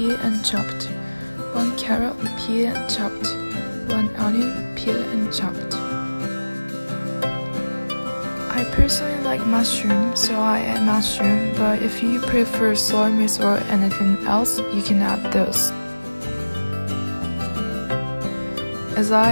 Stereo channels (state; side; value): inverted; both; correlation -1.00